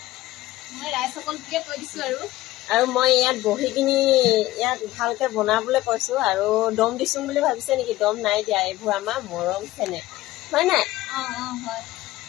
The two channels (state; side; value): quieter; right; 16.7 dB